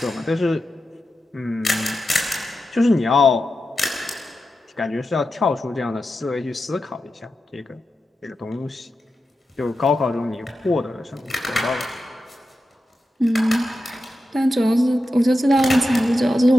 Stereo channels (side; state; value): both; normal; correlation 0.90